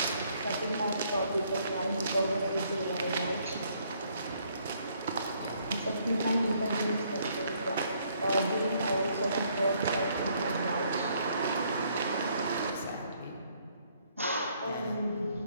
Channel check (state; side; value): inverted; both; correlation -0.67